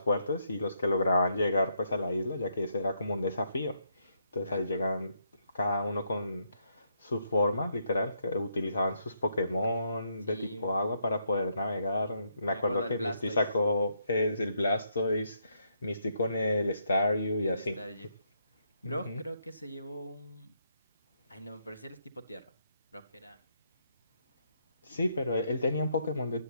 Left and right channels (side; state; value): both; inverted; correlation -0.77